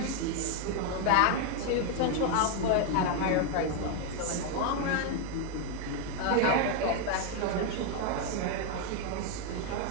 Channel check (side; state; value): both; different; correlation 0.01